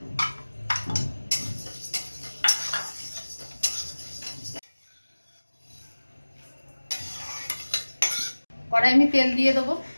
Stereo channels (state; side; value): inverted; both; correlation -1.00